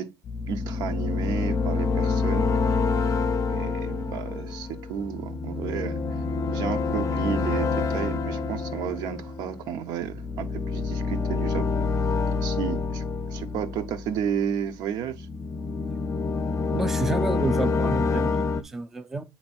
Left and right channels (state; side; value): normal; both; correlation 0.67